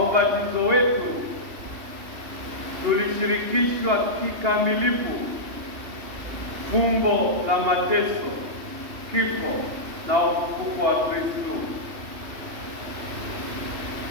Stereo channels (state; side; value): late; left; 2.8 ms